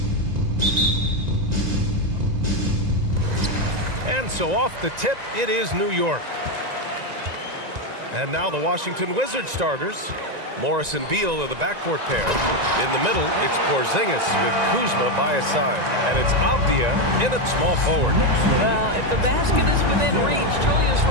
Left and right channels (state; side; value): late; left; 1.9 ms